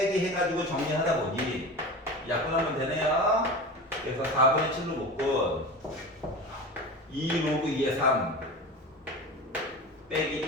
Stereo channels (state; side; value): normal; both; correlation 0.30